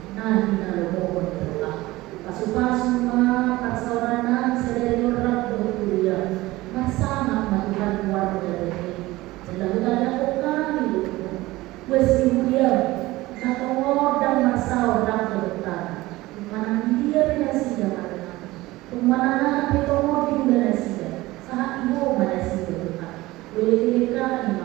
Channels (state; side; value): quieter; left; 18.9 dB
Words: Umana petongo di udara sida, saat ibu mana sida Tuhan. Boleh mereka